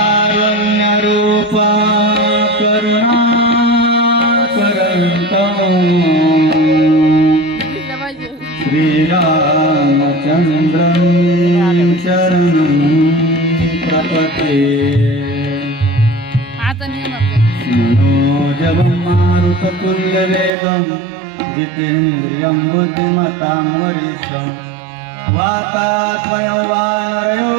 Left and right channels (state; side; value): drops out; left; at 20.5 s